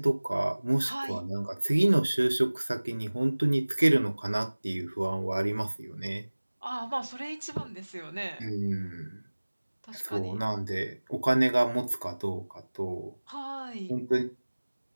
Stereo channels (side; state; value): both; inverted; correlation -1.00